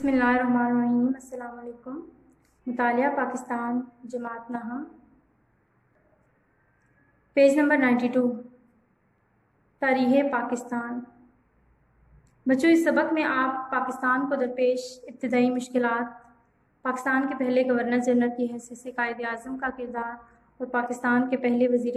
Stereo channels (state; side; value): identical; both; correlation 1.00